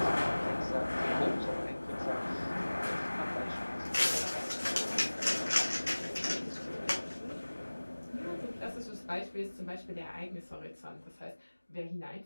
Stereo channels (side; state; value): both; inverted; correlation -1.00